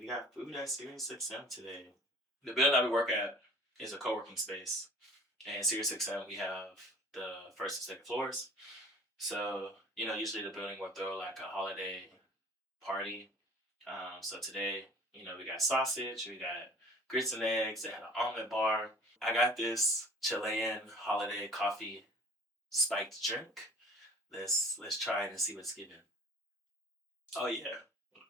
got food at SiriusXM today. The building that we work at is a co-working space, and SiriusXM we have the first and second floors. So usually the building will throw like a holiday party. So today, we got sausage, we got grits and eggs. They had an omelet bar. I got this Chilean holiday coffee spiked drink. Let's try it and see what's given. Oh yeah,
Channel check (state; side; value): normal; both; correlation 0.47